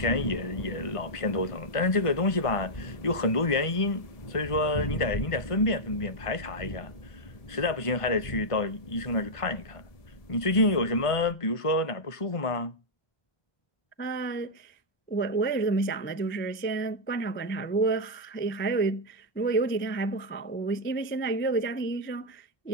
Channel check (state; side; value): late; right; 1.5 ms